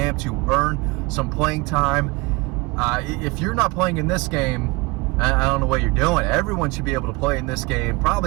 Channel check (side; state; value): left; quieter; 25.0 dB